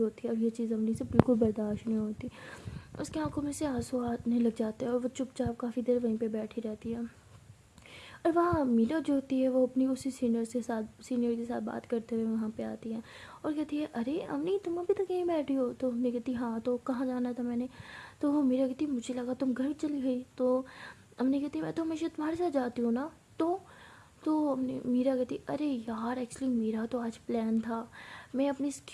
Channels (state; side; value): identical; both; correlation 1.00